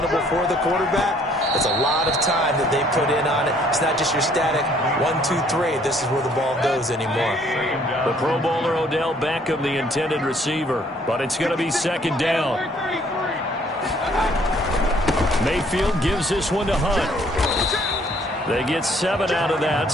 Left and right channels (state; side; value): normal; both; correlation 0.62